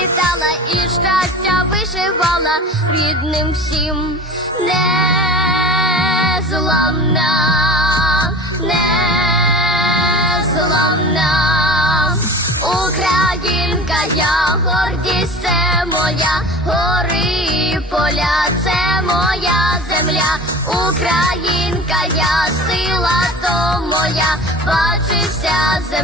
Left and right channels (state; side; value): normal; both; correlation 0.37